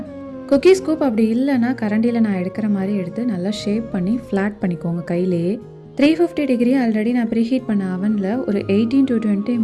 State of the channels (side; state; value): both; identical; correlation 1.00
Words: குக்கீ ஸ்கூப் அப்படி இல்லைன்னா கரண்டியில் நான் எடுக்கிற மாதிரி எடுத்து நல்லா ஷேப் பண்ணி ஃப்ளாட் பண்ணிக்கோங்க கையிலேயே. 350 டிகிரி ஆல்ரெடி நான் ப்ரீஹீட் பண்ண அவனில் ஒரு 18 to 20